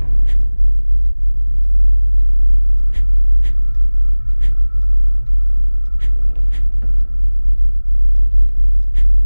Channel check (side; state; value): both; inverted; correlation -1.00